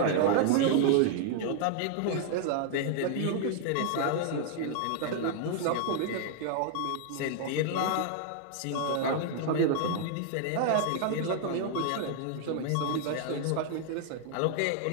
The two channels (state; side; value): different; both; correlation 0.00